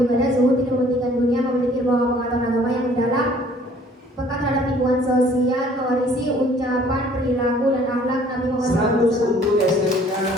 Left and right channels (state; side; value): normal; both; correlation 0.56